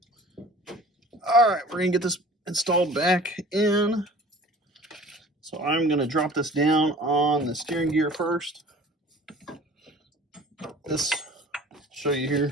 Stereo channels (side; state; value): both; normal; correlation 0.46